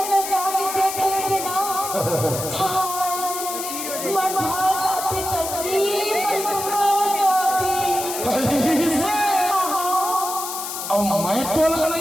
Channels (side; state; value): left; noise; hiss, 6 dB below the sound